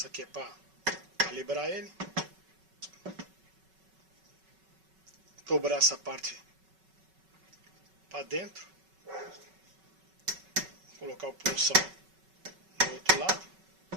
aqui é para calibrar ele. Dobrar essa parte para dentro. Colocar o punção do outro lado.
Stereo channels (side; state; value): left; late; 5.3 ms